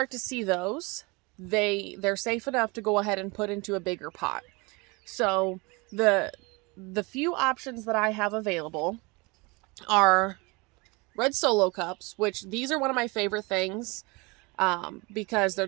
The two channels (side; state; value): left; quieter; 26.9 dB